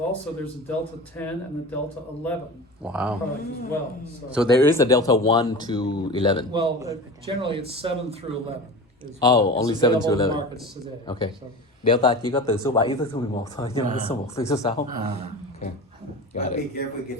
there's a Delta 10 and a Delta 11 Wow. product as well. So there is a Delta 1 to 11. Well, generally it's 7 through 11. Only 7 to available in 11. markets today. Okay. So, Delta chỉ có từ số 7 tới số 11 thôi, nhưng mà số 1 tới số 6. Okay. Got But be it. careful,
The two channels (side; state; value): both; normal; correlation 0.32